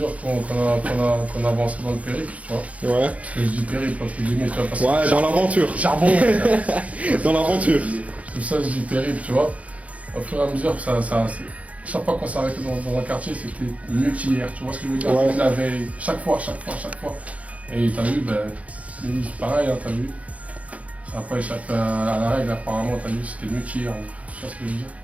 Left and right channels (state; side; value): late; left; 0.067 ms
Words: qu'on avance dans le périple, tu vois. Ouais. Parce que je dis périple, entre guillemets, tu vois, parce que Ouais, dans l'aventure. charbon, Dans l'aventure. tout ça, je dis périple, tu vois. Au fur et à mesure, chaque fois qu'on s'arrêtait dans un quartier, c'était mieux qu'hier, tu vois ce que je veux dire. Ouais. La veille, chaque fois. Et t'as vu, pareil, hein, t'as vu. Ça n'a pas échappé à la règle, apparemment, t'as vu, c'était mieux qu'hier, hein. Tu vois ce que je veux dire.